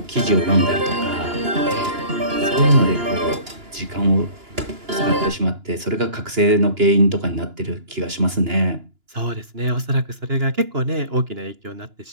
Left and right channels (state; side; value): late; left; 2.9 ms